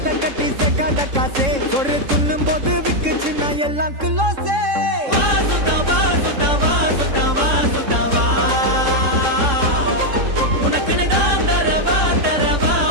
கட்டி சேர்க்காத காசே, ஒரு துண்ணும் போது விக்குச்சுன்னா எல்லாம் கிலோசே. வா சுத்தா வா சுத்தா வா சுத்தா வா சுத்தா வா, உனக்குன்னு தான் தரவா தரவா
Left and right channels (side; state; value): left; late; 3.7 ms